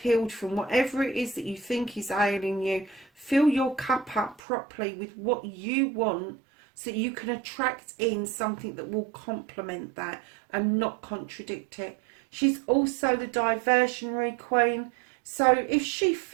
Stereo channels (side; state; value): left; drops out; at 4.4 s